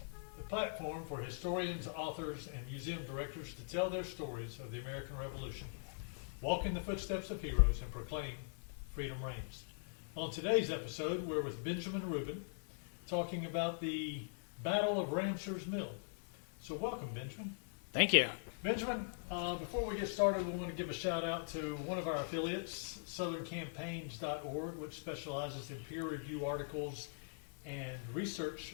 the platform for historians, authors, and museum directors to tell their stories of the American Revolution, walk in the footsteps of heroes, and proclaim freedom reigns. On today's episode, we're with Benjamin Rubin, talking about the Battle of Ramsours Mill. So welcome, Benjamin. Thank you. Benjamin, before we get started, we want to give a shout out to one of our affiliates, southerncampaigns.org, which specializes in peer review articles and research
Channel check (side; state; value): right; silent; digital silence